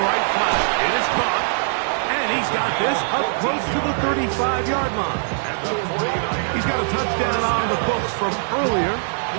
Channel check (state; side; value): silent; left; digital silence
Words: flat. It is caught. And he's got this up close to the 35-yard line. He's got a touchdown on the books from earlier,